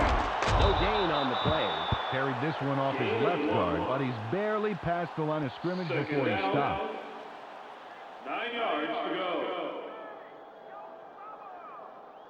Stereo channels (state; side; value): identical; both; correlation 1.00